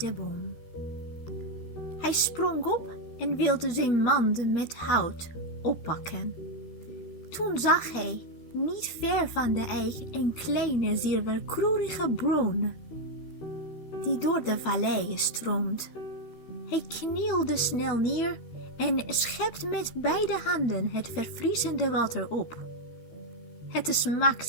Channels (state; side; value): late; right; 13 ms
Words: boom. Hij sprong op en wilde zijn mand met hout oppakken. Toen zag hij, niet ver van de eik, een kleine, zilverkleurige bron, die door de vallei stroomt. Hij knielde snel neer en schept met beide handen het verfrissende water op. Het